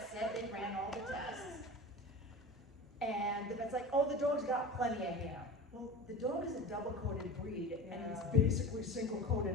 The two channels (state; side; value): normal; both; correlation 0.32